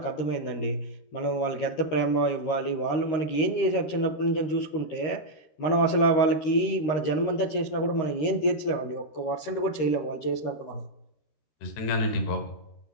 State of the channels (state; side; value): late; right; 13 ms